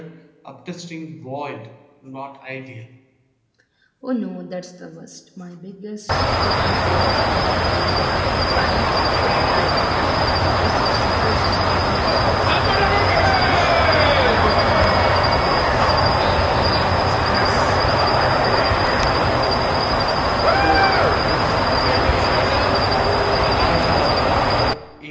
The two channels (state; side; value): identical; both; correlation 1.00